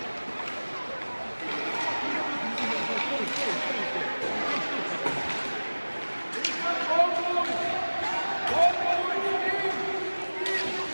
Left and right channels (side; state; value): both; inverted; correlation -1.00